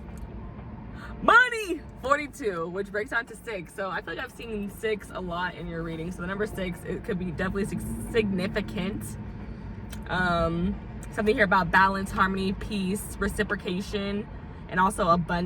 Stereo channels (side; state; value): both; identical; correlation 1.00